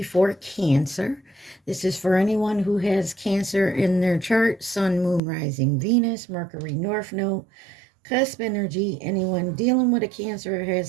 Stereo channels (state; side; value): drops out; left; at 5.2 s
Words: for Cancer. This is for anyone who has Cancer in their chart, Sun, Moon, Rising, Venus, Mercury, North Node, cusp energy. Anyone dealing with a Cancer or